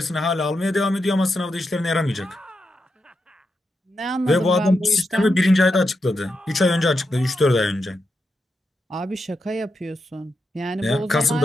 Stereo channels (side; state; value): both; normal; correlation 0.86